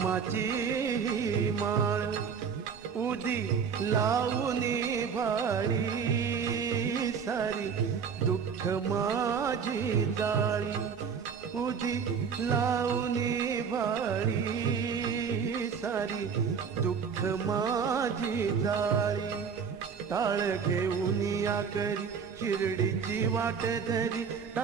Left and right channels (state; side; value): quieter; left; 6.5 dB